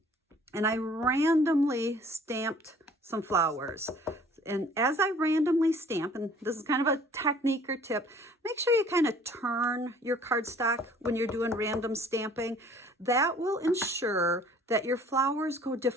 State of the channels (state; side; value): normal; both; correlation 0.54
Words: and I randomly stamped some flowers. And as I randomly stamp, and this is kind of a technique or tip, make sure you kind of turn your cardstock when you're doing random stamping. That will ensure that your flowers go